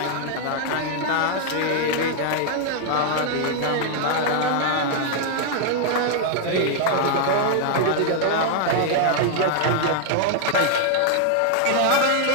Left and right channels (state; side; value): different; both; correlation 0.00